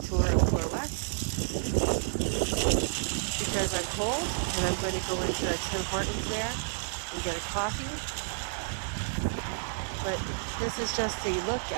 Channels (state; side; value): silent; left; digital silence